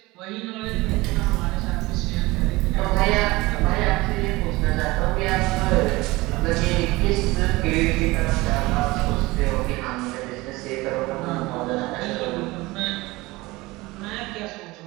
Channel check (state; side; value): quieter; left; 21.2 dB